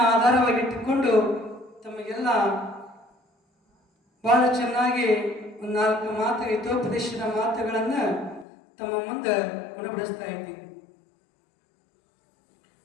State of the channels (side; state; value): right; drops out; at 8.5 s